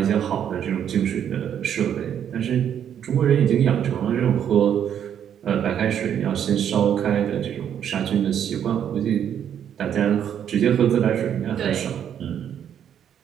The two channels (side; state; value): left; quieter; 9.2 dB